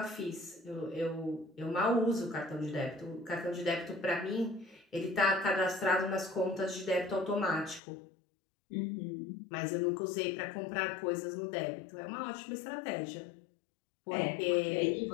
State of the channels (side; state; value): right; drops out; at 7.8 s